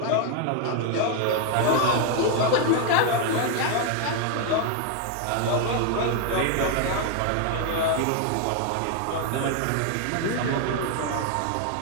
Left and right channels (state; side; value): different; both; correlation 0.01